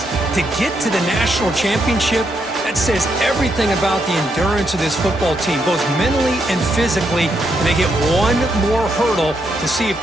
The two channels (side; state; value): both; normal; correlation 0.79